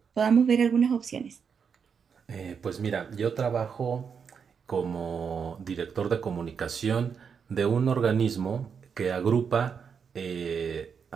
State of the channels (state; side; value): quieter; left; 6.5 dB